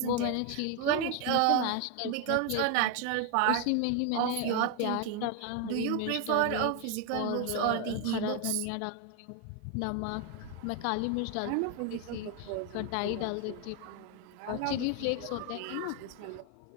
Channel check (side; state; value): both; different; correlation 0.01